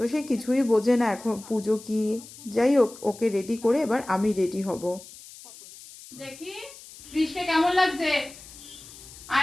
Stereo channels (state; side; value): noise; left; hiss, 18 dB below the sound